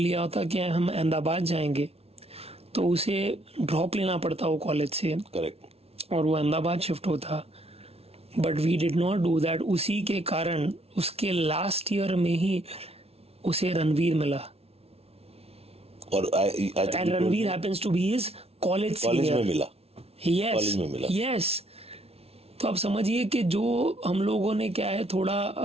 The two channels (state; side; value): late; left; 0.30 ms